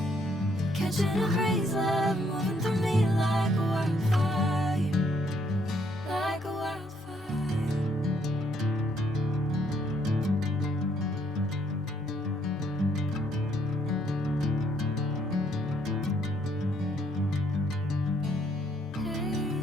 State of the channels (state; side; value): normal; both; correlation 0.70